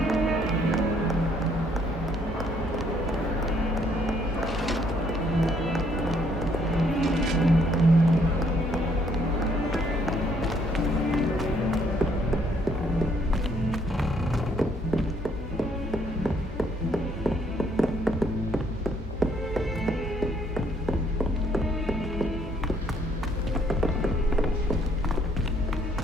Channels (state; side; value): normal; both; correlation 0.67